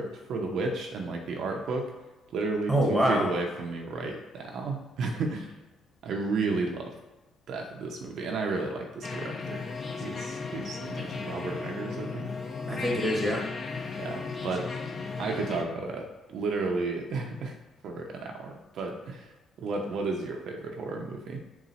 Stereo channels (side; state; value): both; normal; correlation 0.72